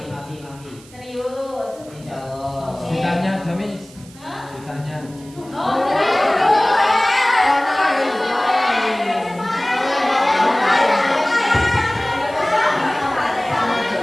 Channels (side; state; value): right; noise; hiss, 23 dB below the sound